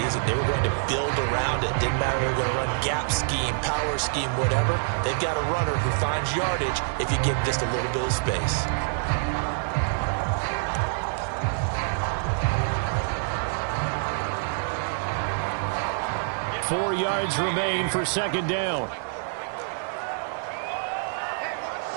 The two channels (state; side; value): silent; left; 59 dB below the other